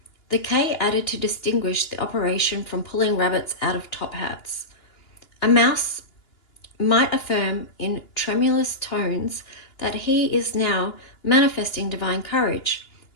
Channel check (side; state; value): right; late; 2.9 ms